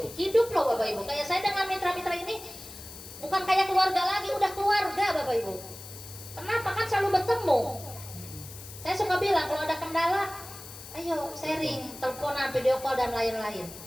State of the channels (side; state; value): left; noise; hiss, 14 dB below the sound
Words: loh Bapak Ibu. Kayak saya dengan mitra-mitra ini bukan kayak keluarga lagi, udah keluarga Bapak Ibu. Kenapa? Kan selalu bertemu. Saya suka bilang kalau ada kendala, ayo sharing, teleponan, video call dan lain-lain.